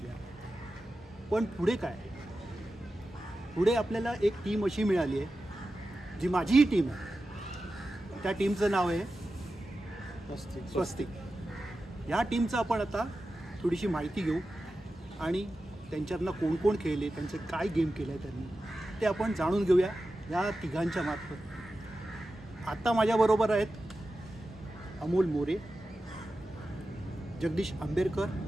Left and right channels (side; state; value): both; normal; correlation 0.92